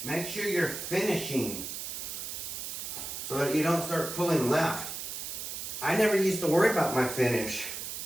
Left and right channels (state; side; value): noise; right; hiss, 6 dB below the sound